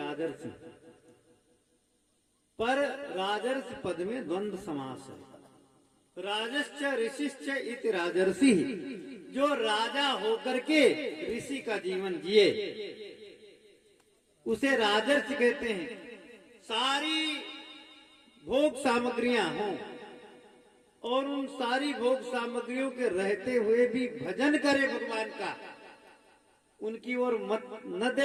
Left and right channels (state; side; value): identical; both; correlation 1.00